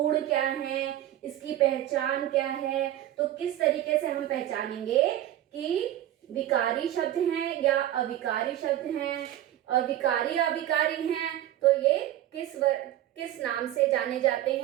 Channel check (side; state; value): left; quieter; 13.0 dB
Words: क्या है, इसकी पहचान क्या है। तो किस तरीके से हम पहचानेंगे कि विकारी शब्द हैं या अविकारी शब्द हैं, अविकारी अविकारी हैं, तो ये किस नाम से जाने जाते